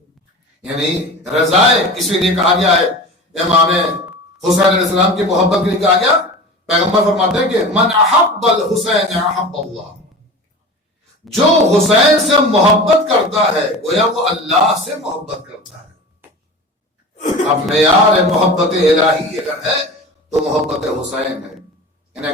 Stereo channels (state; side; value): normal; both; correlation 0.34